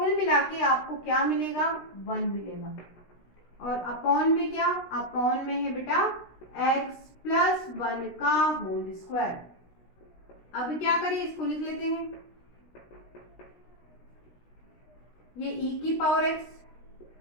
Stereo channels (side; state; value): right; late; 16 ms